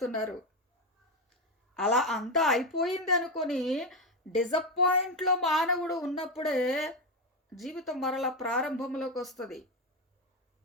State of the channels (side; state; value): both; normal; correlation 0.11